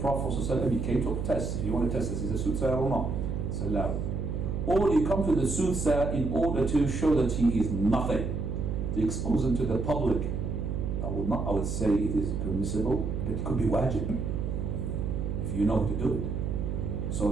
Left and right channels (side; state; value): right; noise; hum, 2 dB below the sound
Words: ﷺ, he came to a test. If you want to test this, is a soothsayer or not? It's allowed. Or you come to the soothsayer in order to show that he is nothing. To expose him to the public. I would say it is permissible, but it could be wajib. If you know how to do it. So